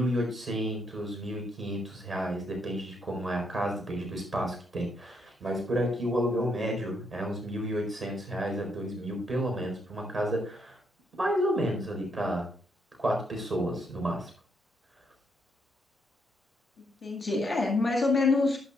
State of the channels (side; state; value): both; normal; correlation 0.75